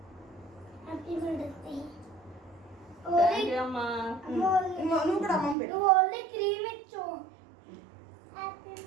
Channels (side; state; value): left; drops out; at 5.6 s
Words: Happy mother's day. Thank you అమ్మా. నువ్వు కూడా అమ్మమ్మ పెట్టు. నువ్వు ఓన్లీ క్రీమ్ ఇచ్చు. Happy